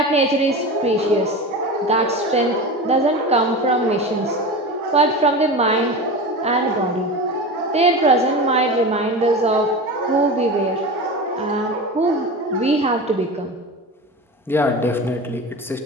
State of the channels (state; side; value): normal; both; correlation 0.28